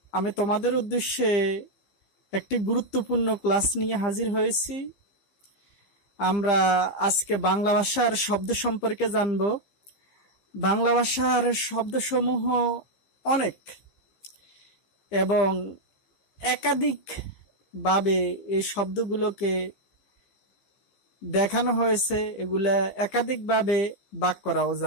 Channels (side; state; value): right; late; 15 ms